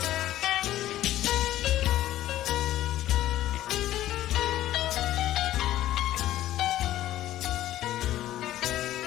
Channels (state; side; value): quieter; right; 13.9 dB